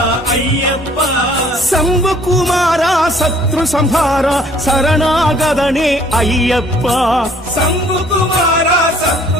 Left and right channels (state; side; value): normal; both; correlation 0.58